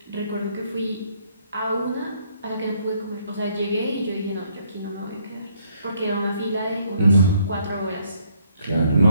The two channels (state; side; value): inverted; both; correlation -0.69